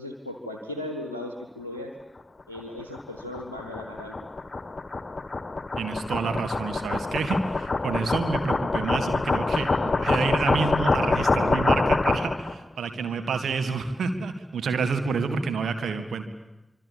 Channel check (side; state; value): both; normal; correlation 0.85